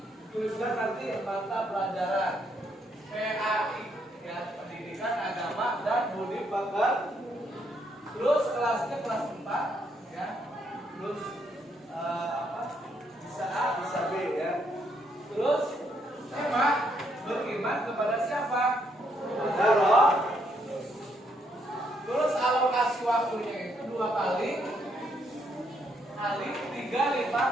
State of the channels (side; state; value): both; normal; correlation 0.74